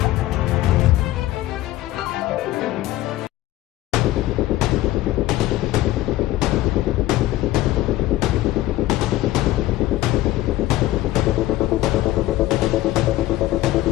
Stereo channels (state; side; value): quieter; right; 16.0 dB